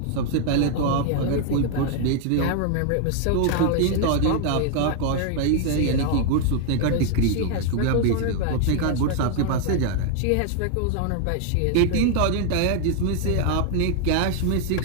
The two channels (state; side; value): different; both; correlation 0.00